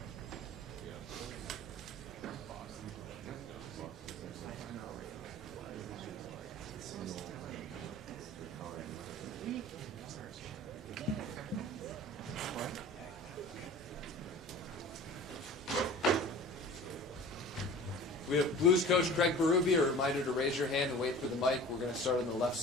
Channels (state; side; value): normal; both; correlation 0.41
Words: We have Blues coach Craig Berube. A reminder to raise your hand and wait for the mic. We're going to start on the left